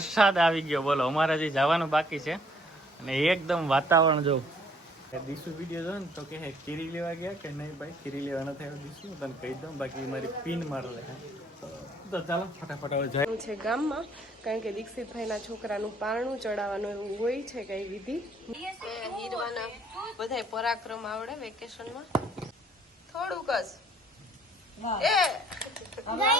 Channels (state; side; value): normal; both; correlation 0.61